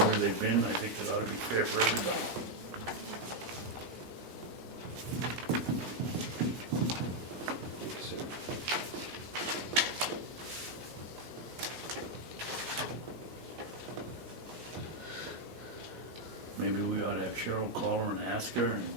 they've been. I think it ought to be fair for everybody. Maybe we ought to have Cheryl call her and ask her and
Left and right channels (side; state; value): both; normal; correlation 0.01